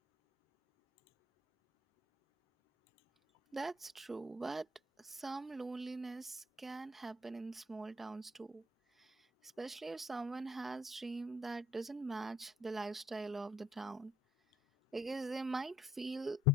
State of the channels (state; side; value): normal; both; correlation 0.65